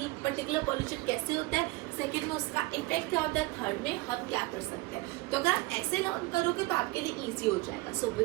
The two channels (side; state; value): left; quieter; 21.5 dB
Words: ये पर्टिकुलर पोल्यूशन कैसे होता है, सेकंड में उसका इफेक्ट क्या होता है, थर्ड में हम क्या कर सकते हैं। तो अगर आप ऐसे लर्न करोगे तो आपके लिए इजी हो जाएगा। So